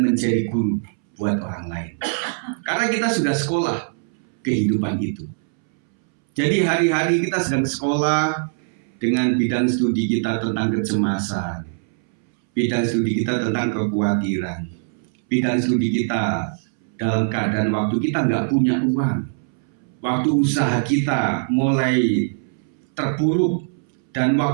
menjadi guru buat orang lain. Karena kita sudah sekolah kehidupan itu. Jadi hari-hari kita sedang sekolah, dengan bidang studi kita tentang kecemasan, bidang studi kita tentang kekhawatiran, bidang studi kita dalam keadaan waktu kita nggak punya uang, waktu usaha kita mulai terpuruk, dan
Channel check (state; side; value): silent; left; 64 dB below the other